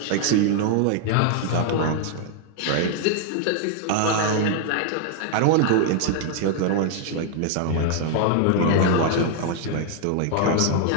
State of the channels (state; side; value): different; both; correlation 0.00